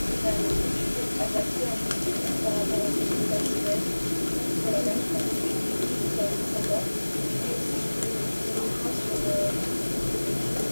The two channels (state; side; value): inverted; both; correlation -1.00